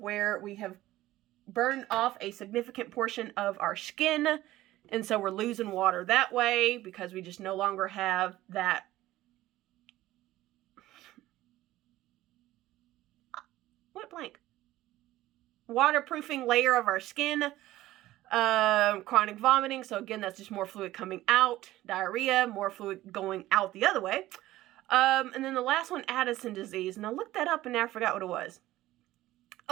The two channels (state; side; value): quieter; left; 15.8 dB